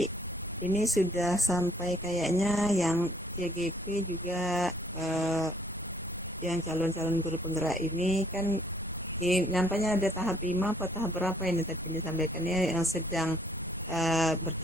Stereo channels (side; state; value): both; normal; correlation 0.62